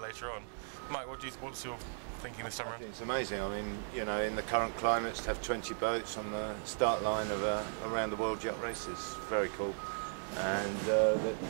on. Mike, what's your thinking this time around? It's amazing. I mean, you know, in the current climates, to have 20 boats on the start line of a around the world yacht race is very cool. And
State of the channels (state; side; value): silent; left; digital silence